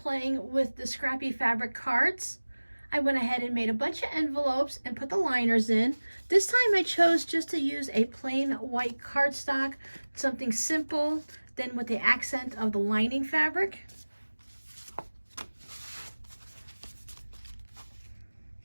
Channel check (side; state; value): both; inverted; correlation -1.00